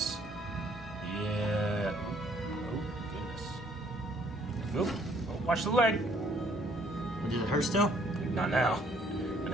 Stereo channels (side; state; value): both; normal; correlation 0.63